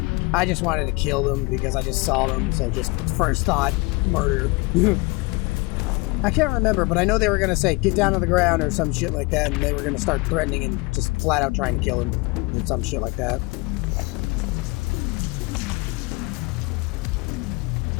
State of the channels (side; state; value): right; quieter; 25.3 dB